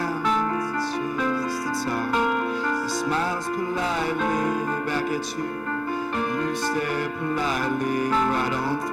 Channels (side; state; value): left; noise; hum, 27 dB below the sound